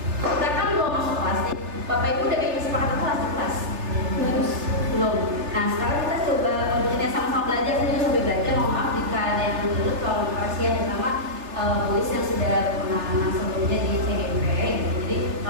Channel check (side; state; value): left; late; 3.3 ms